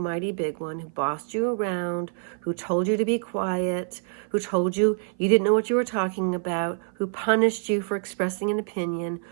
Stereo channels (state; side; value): silent; left; 55 dB below the other